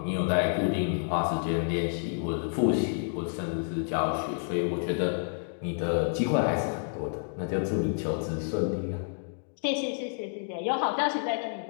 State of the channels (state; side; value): silent; right; digital silence